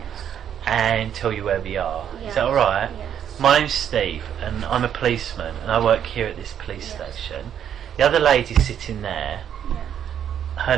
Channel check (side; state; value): left; quieter; 9.3 dB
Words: and tell you where we are. Yes. Is that alright? Yes. My name's Steve and I'm a policeman and I work here at this police Yes. station. The other lady sitting there, Yeah. her